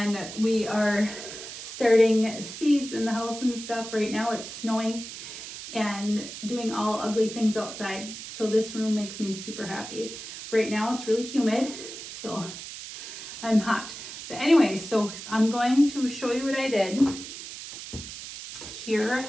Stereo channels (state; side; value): noise; right; hiss, 11 dB below the sound